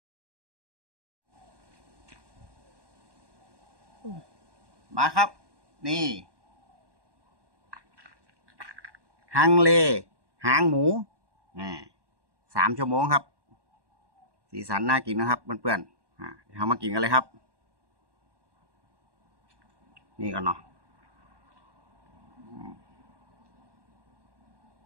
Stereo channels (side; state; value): left; late; 1.2 ms